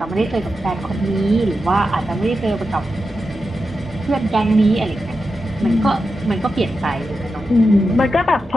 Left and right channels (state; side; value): normal; both; correlation 0.89